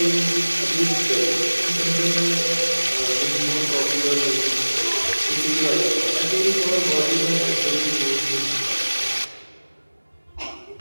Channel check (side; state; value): both; inverted; correlation -1.00